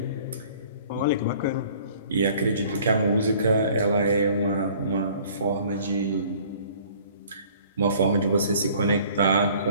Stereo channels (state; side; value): inverted; both; correlation -0.53